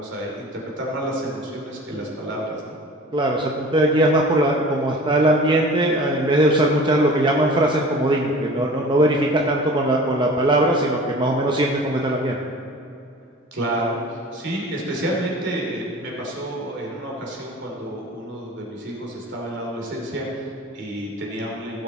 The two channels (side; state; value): both; normal; correlation 0.42